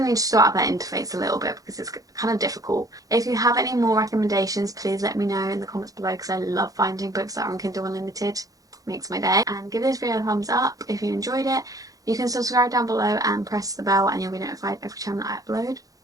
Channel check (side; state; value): left; late; 0.17 ms